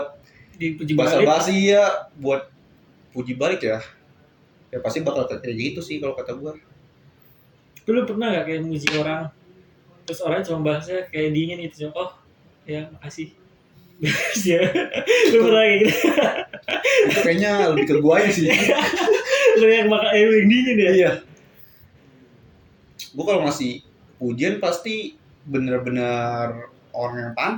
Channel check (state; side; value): identical; both; correlation 1.00